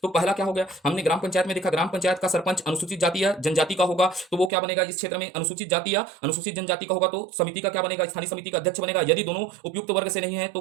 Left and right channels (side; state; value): left; drops out; at 4.5 s